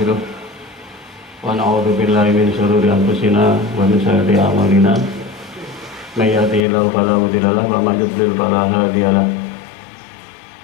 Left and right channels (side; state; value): right; drops out; at 6.7 s